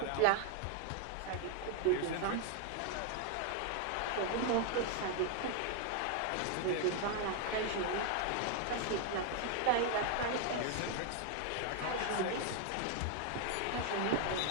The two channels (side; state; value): both; different; correlation 0.00